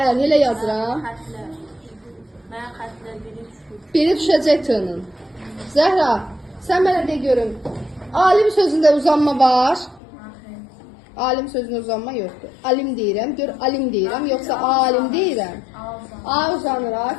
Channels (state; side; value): drops out; right; at 10.0 s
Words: əl, elə yazıram. Mən xətlər biri düşür. Biri düşəcək t-nın. Zəhra, sən mənə de görüm. Alim sözündə uzanma var. Alim sözündə uzanma yoxdur. Alim deyirəm, gör alim deyirəm, yoxsa alim deyirəm. A uzanır,